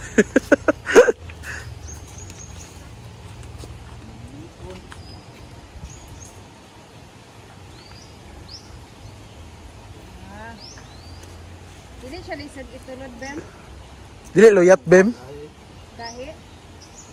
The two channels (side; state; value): both; identical; correlation 1.00